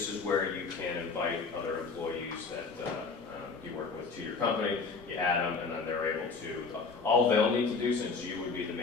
is where you can invite other employees that you work with to your company. You add them, and then they're able to, all they'll need to do, since you would be the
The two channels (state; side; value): quieter; right; 4.7 dB